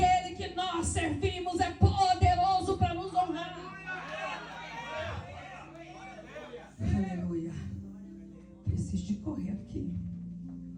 que nós servimos é poderoso para nos honrar. Aleluia. Preciso de correr aqui.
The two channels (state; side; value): identical; both; correlation 1.00